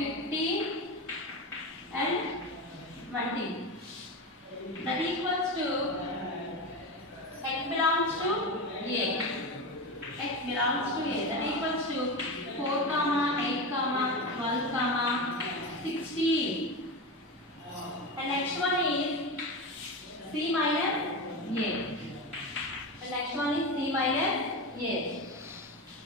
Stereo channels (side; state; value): both; normal; correlation 0.20